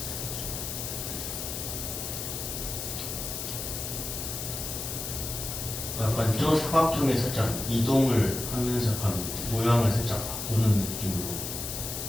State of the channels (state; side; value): noise; left; hiss, 5 dB below the sound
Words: 약간 저 사각형에 살짝 이동을 하면서 약간 모양을 살짝 바꾸는 느낌으로.